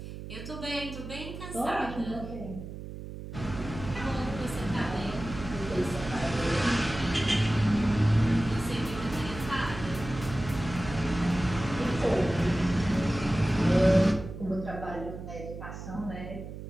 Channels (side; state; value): right; noise; hum, 10 dB below the sound